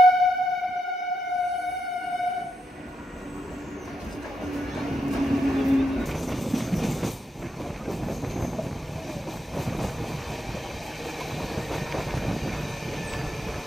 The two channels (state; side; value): normal; both; correlation 0.82